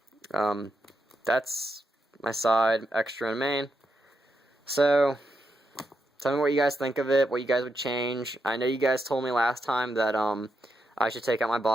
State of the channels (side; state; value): both; normal; correlation 0.84